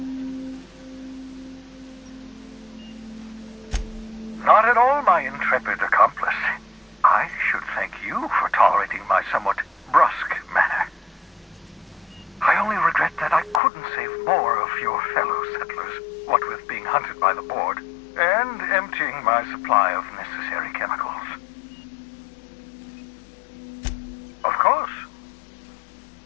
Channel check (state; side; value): drops out; right; at 13.6 s